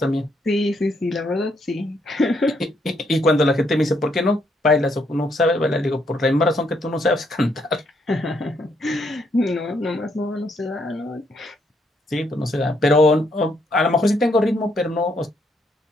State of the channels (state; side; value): normal; both; correlation 0.73